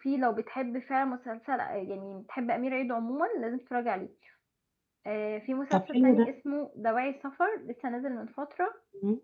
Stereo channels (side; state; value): both; identical; correlation 1.00